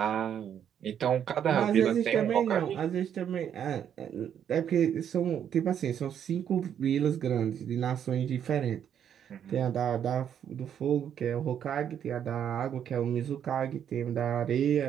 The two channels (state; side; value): quieter; left; 9.1 dB